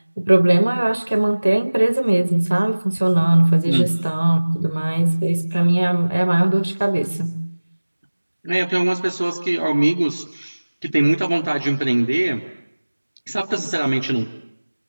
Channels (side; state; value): both; inverted; correlation -1.00